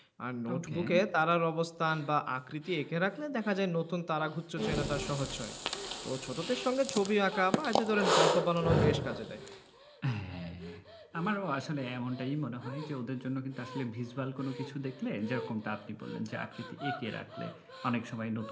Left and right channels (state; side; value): identical; both; correlation 1.00